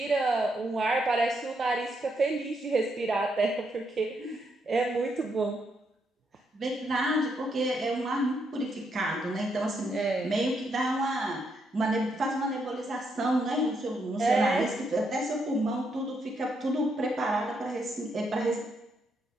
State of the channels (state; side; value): normal; both; correlation 0.78